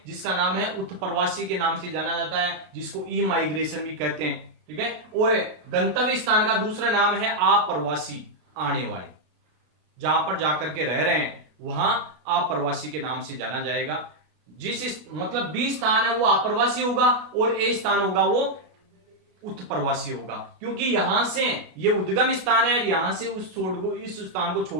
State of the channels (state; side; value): late; left; 33 ms